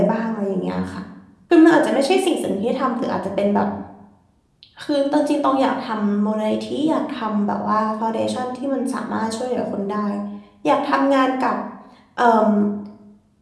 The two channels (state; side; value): identical; both; correlation 1.00